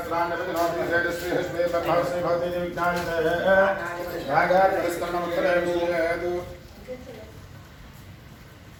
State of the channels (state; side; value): identical; both; correlation 1.00